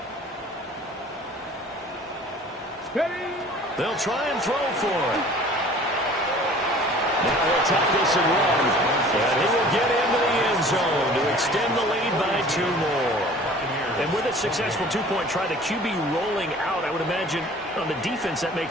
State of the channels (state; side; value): normal; both; correlation 0.48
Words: They'll try and throw for it. Now he'll take this and run. And he will get into the end zone to extend the lead by 2 more. And with a successful 2-point try, the QB rolling out, I would imagine on the defense that